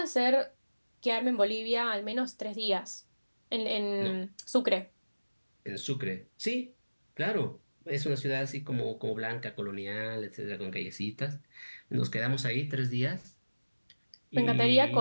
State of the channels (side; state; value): both; inverted; correlation -1.00